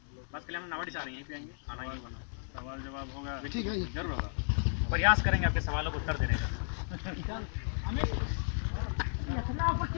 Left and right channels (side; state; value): right; silent; digital silence